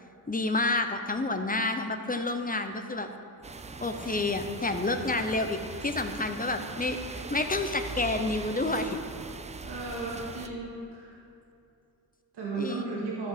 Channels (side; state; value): both; normal; correlation 0.17